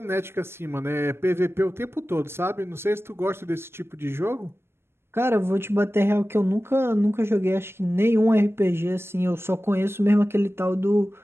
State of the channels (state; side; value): late; left; 0.12 ms